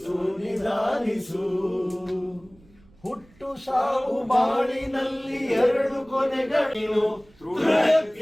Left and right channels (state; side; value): noise; right; rumble, 29 dB below the sound